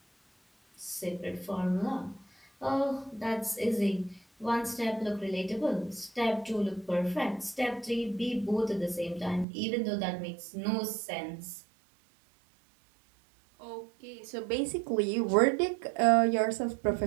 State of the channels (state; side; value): drops out; left; at 9.5 s